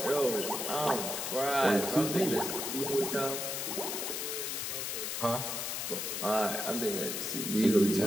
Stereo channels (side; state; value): left; noise; hiss, 3 dB below the sound